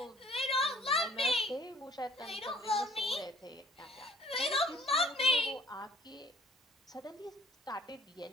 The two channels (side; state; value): both; normal; correlation 0.56